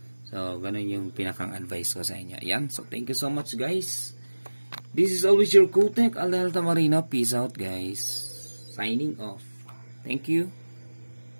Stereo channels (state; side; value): inverted; both; correlation -1.00